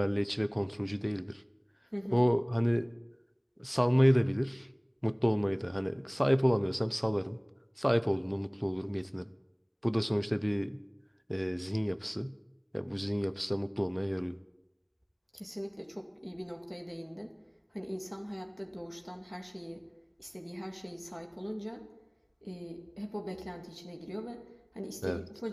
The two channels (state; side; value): identical; both; correlation 1.00